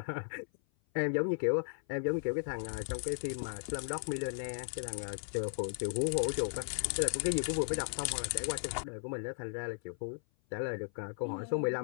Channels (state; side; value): silent; right; 54 dB below the other